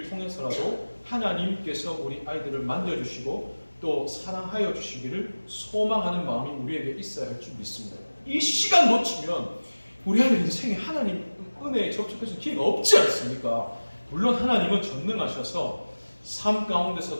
통해서라도 하나님께서 우리 아이들을 만져주시고 또 사랑하여 주시기를 소망하는 마음이 우리에게 있어야 할 줄 믿습니다. 이 시간 놓치면 우리 아이들 인생에 하나님 은혜에 접촉해서 기회가 없지 않습니까? 물론 하나님은 전능하셔서 삶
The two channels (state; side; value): inverted; both; correlation -1.00